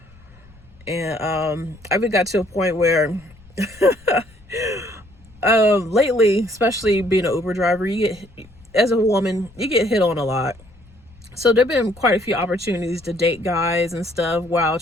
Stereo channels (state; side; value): noise; left; rumble, 26 dB below the sound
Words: And I even got to a point where lately, especially being an Uber driver, you get, as a woman, you get hit on a lot. So there've been quite a few opportunities to date guys and stuff while